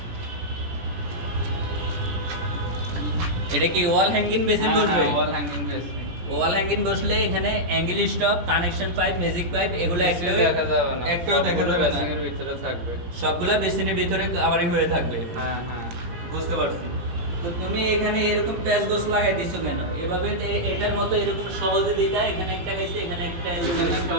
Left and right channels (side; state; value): left; late; 17 ms